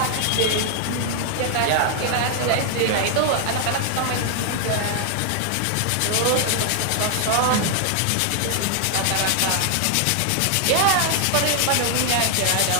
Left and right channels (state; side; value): different; both; correlation 0.00